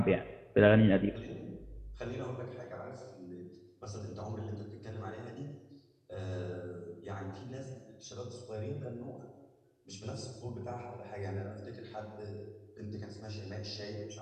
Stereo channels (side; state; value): both; identical; correlation 1.00